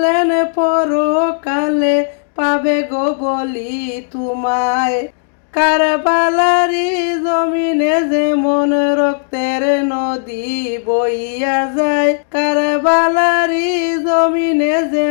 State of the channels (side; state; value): right; silent; digital silence